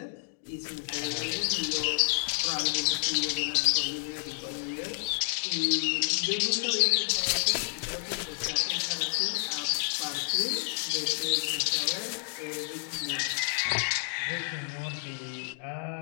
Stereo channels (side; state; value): right; silent; digital silence